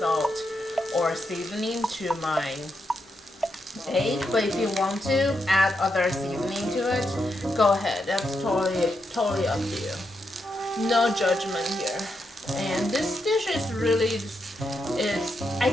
or seasoning to my egg. But if you want to add other seasoning to it, go ahead. That's totally up to you. No judgment here. And this dish is really, I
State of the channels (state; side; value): normal; both; correlation 0.83